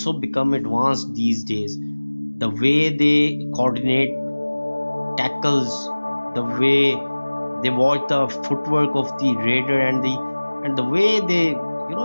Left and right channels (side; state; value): both; inverted; correlation -1.00